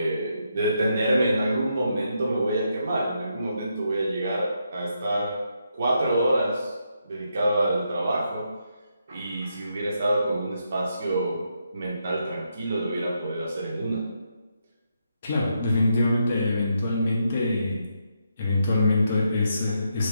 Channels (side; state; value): both; inverted; correlation -0.80